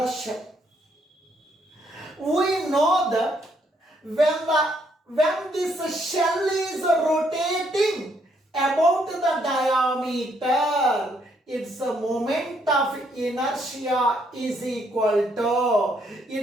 shell. We know that when this shell is rotating about the diameter, its a moment of inertia is equal to,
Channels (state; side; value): normal; both; correlation 0.72